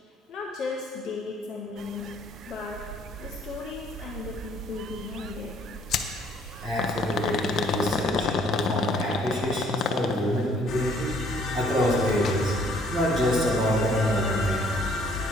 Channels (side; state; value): both; normal; correlation 0.61